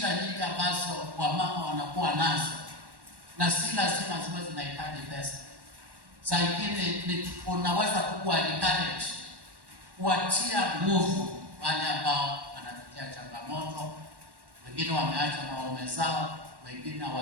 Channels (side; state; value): left; late; 1.1 ms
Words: nyingi ambazo wamama wanakuwa nazo, na si lazima ziwe zinahitaji pesa. Saa ingine unaweza kuwa encourage, kuwatia nguvu wale ambao wanapitia changamoto. Wengine wameacha na waume zao, wengine